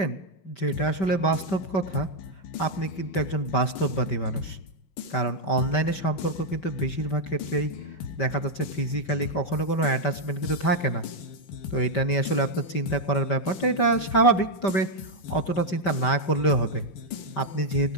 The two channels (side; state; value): right; late; 5.2 ms